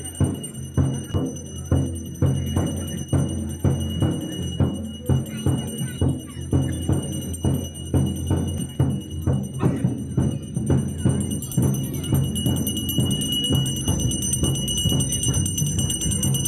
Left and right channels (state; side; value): identical; both; correlation 1.00